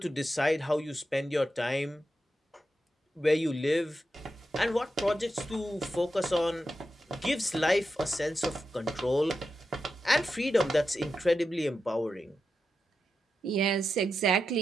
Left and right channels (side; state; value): both; normal; correlation 0.88